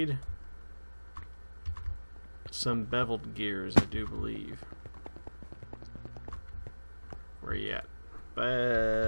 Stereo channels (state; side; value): inverted; both; correlation -1.00